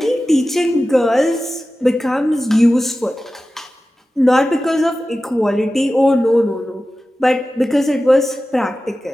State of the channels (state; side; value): normal; both; correlation 0.95